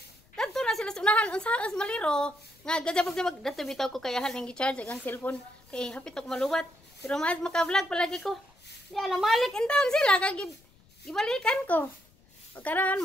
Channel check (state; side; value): noise; left; rumble, 29 dB below the sound